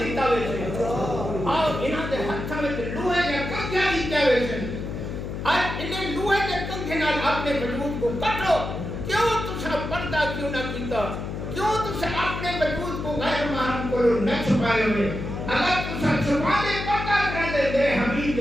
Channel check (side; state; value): left; noise; hum, 6 dB below the sound